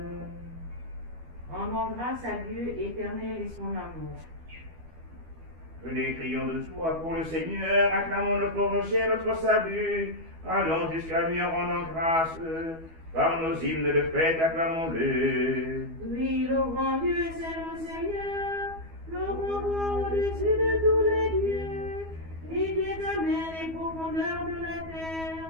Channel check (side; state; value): left; late; 12 ms